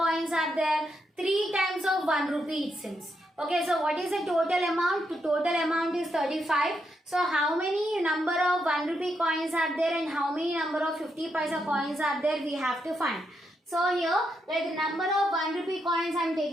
are there? 3 times of 1 rupee it seems. Okay, so what is the total amount? The total amount is 35. So how many number of 1 rupee coins are there and how many number of 50 paisa coins are there? We have to find. So here, like the number of 1 rupee coins I am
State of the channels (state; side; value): normal; both; correlation 0.81